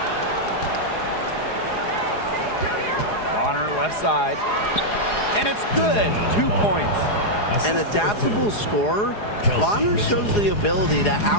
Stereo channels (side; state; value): right; late; 4.8 ms